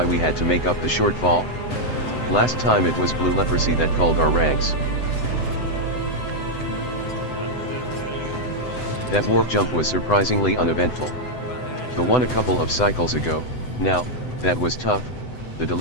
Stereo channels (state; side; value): late; right; 7.9 ms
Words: we had to make up the shortfall? Last time it was blue leprosy that culled our ranks. That warp jump was surprisingly uneventful. The one a couple of cycles ago, now, that was tough. The